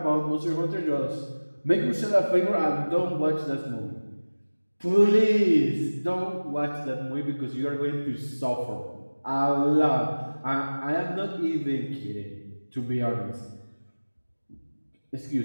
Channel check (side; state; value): both; inverted; correlation -1.00